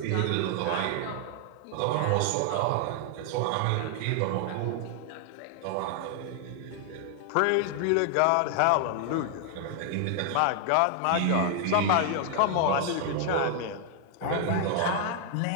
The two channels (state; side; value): different; both; correlation 0.00